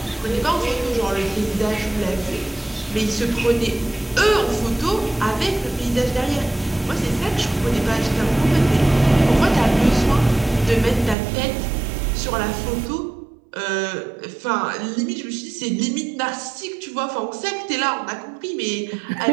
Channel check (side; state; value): left; drops out; at 11.2 s